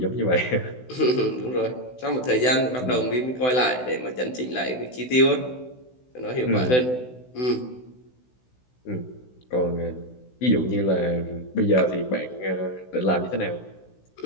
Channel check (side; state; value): right; late; 16 ms